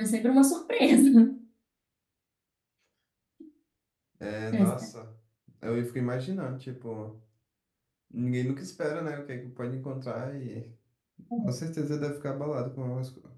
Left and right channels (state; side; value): identical; both; correlation 1.00